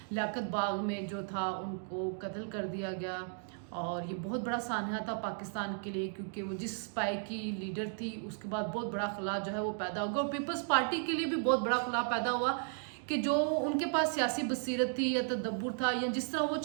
लियाकत बाग में जो था उनको कत्ल कर दिया गया और ये बहुत बड़ा सान्हा था पाकिस्तान के लिए, क्योंकि वो जिस पाई की लीडर थी उसके बाद बहुत बड़ा खला जो है वो पैदा होगा और पीपल्स पार्टी के लिए भी बहुत बड़ा खला पैदा हुआ कि जो उनके पास सियासी बसीरत थी या तदब्बुर था या जिस तरह वो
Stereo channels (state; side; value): silent; left; 55 dB below the other